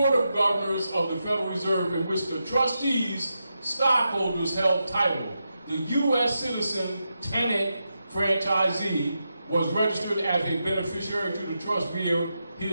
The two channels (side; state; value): both; inverted; correlation -0.87